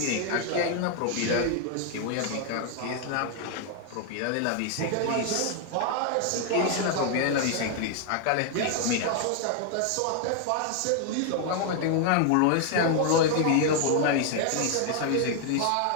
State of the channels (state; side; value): different; both; correlation 0.00